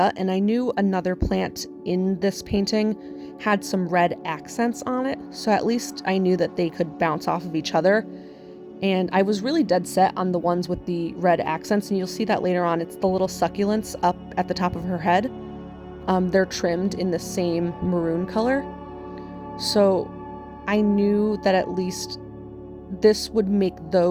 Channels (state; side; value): identical; both; correlation 1.00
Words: and I knew another plant in this painting had some red accents on it, so at least I knew that they could bounce off of each other. And I was really dead set on the ones with the red accents, and you'll see that later on. It's the little succulents up at the top of her head. They're trimmed in the same maroon color. So I knew that at least this would make